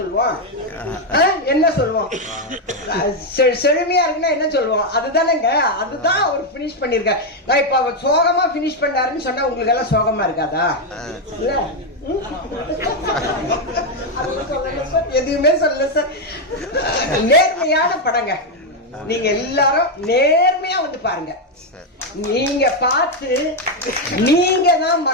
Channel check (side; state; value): both; normal; correlation 0.04